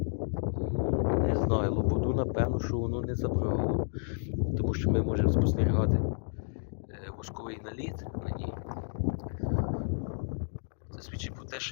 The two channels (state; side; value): silent; right; digital silence